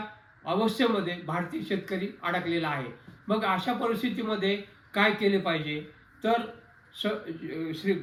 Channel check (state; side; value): identical; both; correlation 1.00